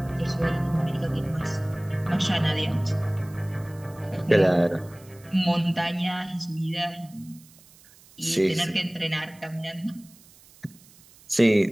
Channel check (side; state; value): right; noise; hiss, 25 dB below the sound